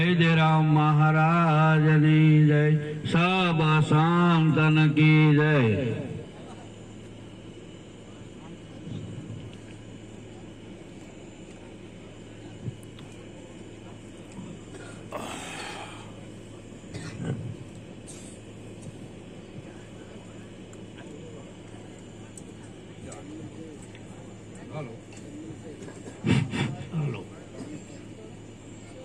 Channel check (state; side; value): identical; both; correlation 1.00